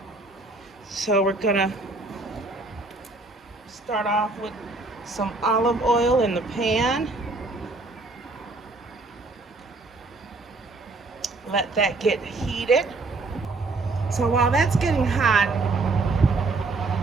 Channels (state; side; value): quieter; left; 3.4 dB